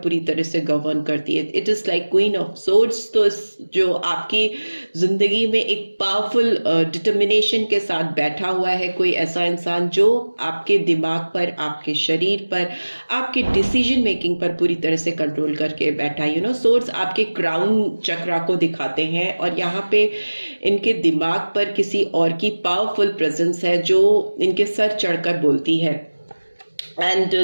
पूरी तरह से गवर्न करती है। It is like queen of swords. तो जो आपकी जिंदगी में एक पावरफुल डिटर्मिनेशन के साथ बैठा हुआ है कोई ऐसा इंसान जो आपके दिमाग पर, आपके शरीर पर, आपके डिसीजन मेकिंग पर पूरी तरह से कंट्रोल करके बैठा है। सोर्ड्स आपके क्राउन चक्रा को दिखाते हैं, और यहाँ पे इनके दिमाग पर किसी और की पावरफुल प्रेजेंस है जो इनके सर चढ़कर बोलती है। एंड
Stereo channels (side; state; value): both; inverted; correlation -1.00